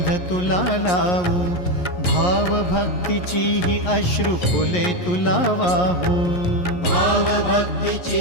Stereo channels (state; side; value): late; right; 11 ms